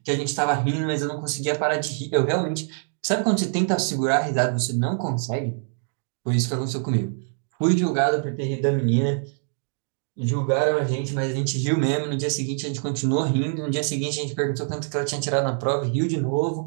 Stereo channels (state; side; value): silent; left; 62 dB below the other